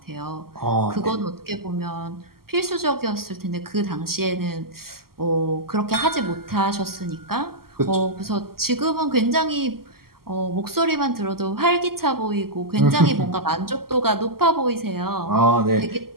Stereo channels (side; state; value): left; late; 0.93 ms